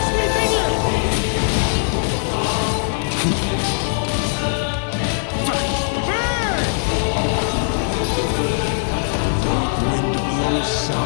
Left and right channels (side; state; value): right; silent; 66 dB below the other